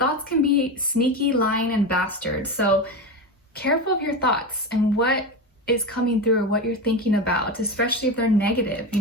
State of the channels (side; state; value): both; normal; correlation 0.20